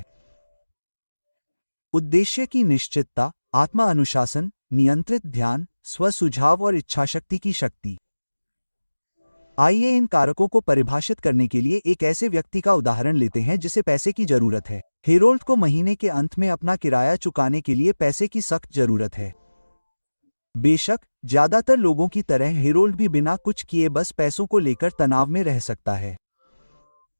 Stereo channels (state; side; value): inverted; both; correlation -1.00